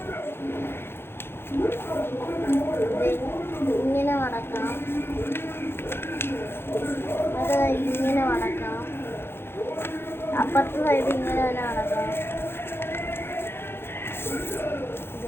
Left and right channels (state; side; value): late; right; 0.11 ms